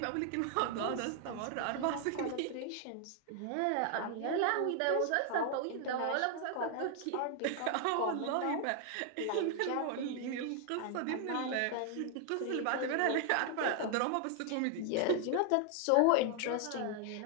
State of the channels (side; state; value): both; different; correlation 0.00